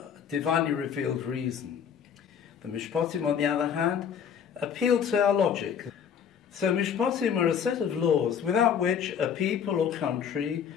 divinely revealed reason. The Mishpatim, on the other hand, appeal to our logic. So Mishpatim are a set of laws without which a people or country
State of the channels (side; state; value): right; quieter; 7.9 dB